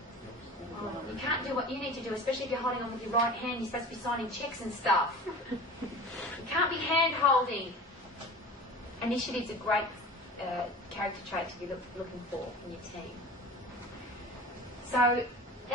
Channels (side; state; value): both; normal; correlation 0.37